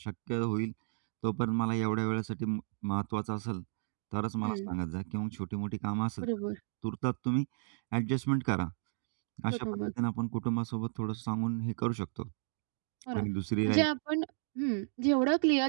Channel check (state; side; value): silent; left; digital silence